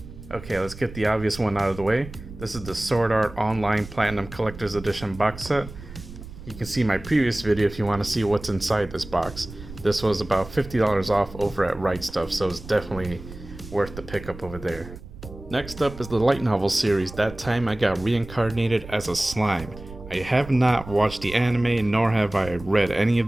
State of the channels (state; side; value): noise; right; rumble, 15 dB below the sound